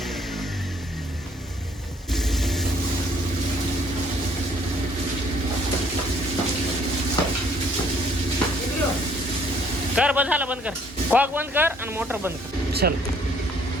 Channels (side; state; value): both; normal; correlation 0.62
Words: कर बंद झालं. बंद कर. कॉक बंद कर आणि मोटर बंद कर. चल